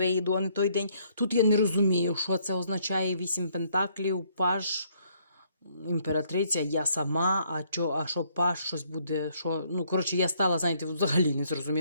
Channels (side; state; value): both; inverted; correlation -0.67